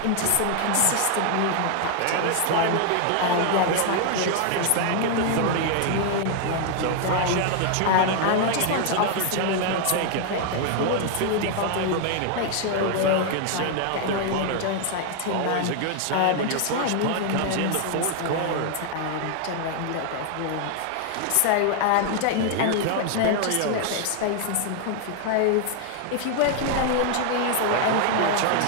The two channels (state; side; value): different; both; correlation 0.00